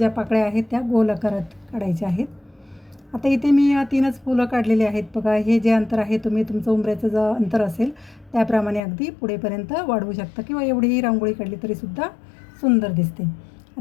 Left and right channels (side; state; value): right; drops out; at 8.8 s